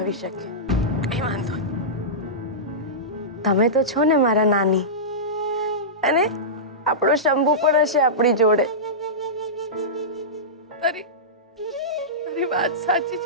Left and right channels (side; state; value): both; normal; correlation -0.17